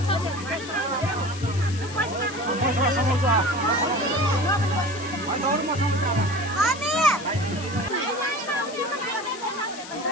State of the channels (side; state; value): left; noise; hiss, 14 dB below the sound